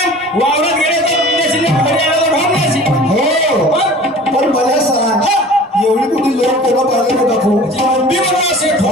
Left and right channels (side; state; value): both; normal; correlation 0.43